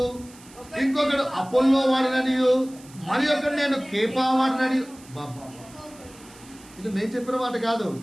ఇంకొకడు అపోల్లో వాడననియు, మరి ఒకడు నేను కేఫా వాడననియు. బాబా, ఇది నేను చెప్పిన మాట కాదు.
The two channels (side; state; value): right; noise; hiss, 23 dB below the sound